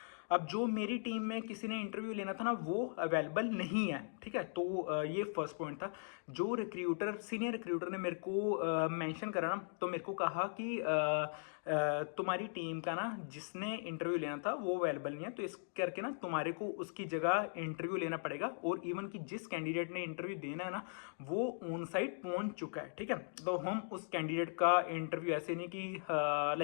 अब जो मेरी टीम में किसी ने इंटरव्यू लेना था ना वो अवेलेबल नहीं है, ठीक है। तो ये फर्स्ट पॉइंट था। जो रिक्रूटर सीनियर रिक्रूटर ने मेरे को मेंशन करा ना, तो मेरे को कहा कि तुम्हारी टीम का ना जिसने इंटरव्यू लेना था वो अवेलेबल नहीं है, तो इस करके ना तुम्हारे को उसकी जगह इंटरव्यू लेना पड़ेगा। और इवन कि जिस कैंडिडेट ने इंटरव्यू देना है ना वो ऑन साइट पहुंच चुका है, ठीक है। तो हम उस कैंडिडेट का इंटरव्यू ऐसे नहीं कि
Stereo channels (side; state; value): right; silent; digital silence